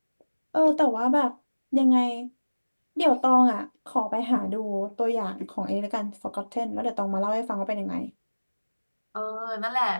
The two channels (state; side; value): inverted; both; correlation -1.00